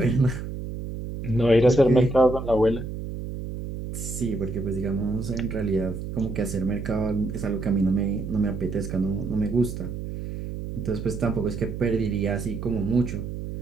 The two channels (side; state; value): right; noise; hum, 7 dB below the sound